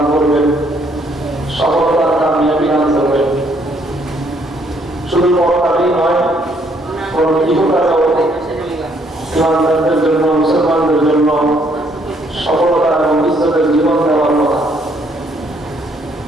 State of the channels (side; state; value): both; normal; correlation 0.68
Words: করবেন, সফলতার কামিয়াবি দান করবেন। শুধু পরকালেই নয়, বরং ইহকালেও ঈমানদারদের জন্য, মুসলমানদের জন্য সফলতা এবং ইজ্জতের জীবন দেওয়ার কথা।